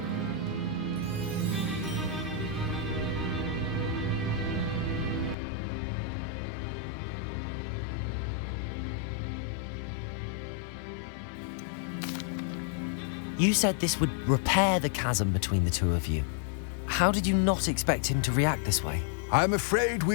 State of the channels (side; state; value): right; drops out; at 5.4 s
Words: You said this would repair the chasm between the two of you. How did you not expect him to react this way? I'm afraid